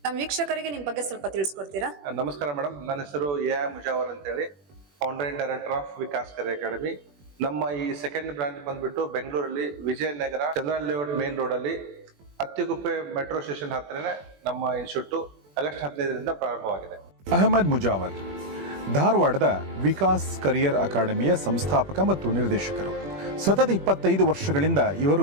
ನಮ್ಮ ವೀಕ್ಷಕರಿಗೆ ನಿಮ್ಮ ಬಗ್ಗೆ ಸ್ವಲ್ಪ ತಿಳಿಸ್ಕೊಡ್ತೀರಾ? ನಮಸ್ಕಾರ ಮೇಡಮ್, ನನ್ನ ಹೆಸರು ಎ ಮುಜಾವರ್ ಅಂತೇಳಿ, founder and director of Vikas career academy. ನಮ್ಮ ಈ ಸೆಕೆಂಡ್ ಬ್ರಾಂಚ್ ಬಂದ್ಬಿಟ್ಟು ಬೆಂಗಳೂರಲ್ಲಿ Vijayanagara Chandran layout main road ಅಲ್ಲಿ ಅತ್ತಿಗುಪ್ಪೆ ಮೆಟ್ರೋ ಸ್ಟೇಷನ್ ಹತ್ತಿರನೇ ನಮ್ಮ ಇನ್ಸ್ಟಿಟ್ಯೂಟ್ ಆಗಸ್ಟ್ 15ರಿಂದ ಪ್ರಾರಂಭವಾಗಿದೆ. ಅಹಮದ್ ಮುಜಾವರ್ ಧಾರವಾಡದ ವಿಕಾಸ್ ಕರಿಯರ್ ಅಕಾಡೆಮಿಯ ಸಂಸ್ಥಾಪಕ ಮತ್ತು ನಿರ್ದೇಶಕರು. ಸತತ 25 ವರ್ಷಗಳಿಂದ ಇವರು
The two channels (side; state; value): left; late; 21 ms